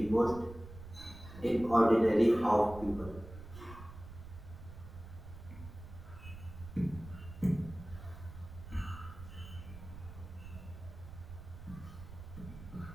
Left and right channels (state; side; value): noise; right; rumble, 14 dB below the sound